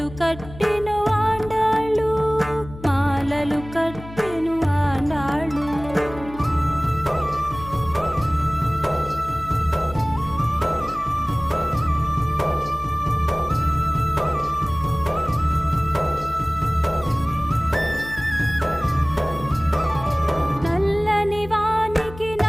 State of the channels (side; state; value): left; noise; hum, 15 dB below the sound